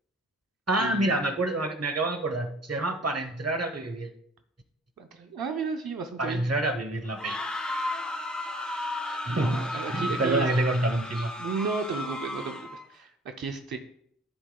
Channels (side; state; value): both; normal; correlation 0.51